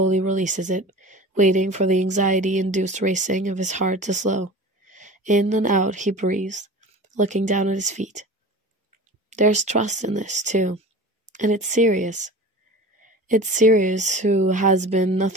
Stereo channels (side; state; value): both; normal; correlation 0.37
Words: releases it, waiting for the anxiety-induced racing of his heart to slow. In and out he breathes, looking down at his feet. There's trust in this, too, and it's Sirius. It's Sirius who has been